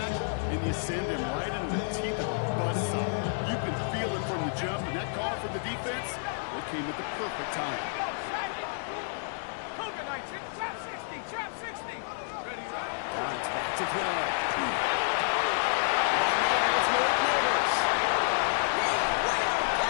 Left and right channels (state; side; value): silent; right; 57 dB below the other